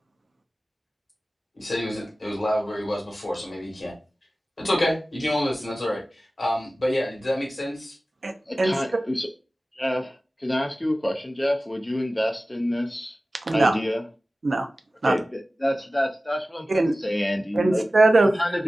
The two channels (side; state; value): both; normal; correlation 0.96